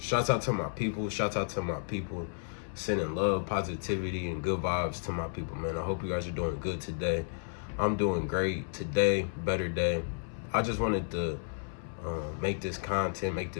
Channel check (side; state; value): right; silent; 56 dB below the other